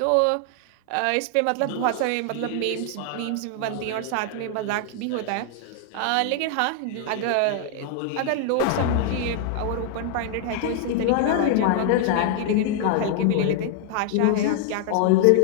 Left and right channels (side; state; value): both; different; correlation 0.00